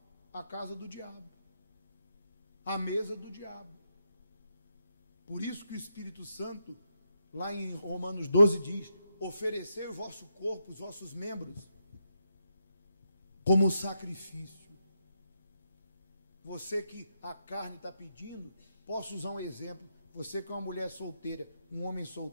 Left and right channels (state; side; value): inverted; both; correlation -0.82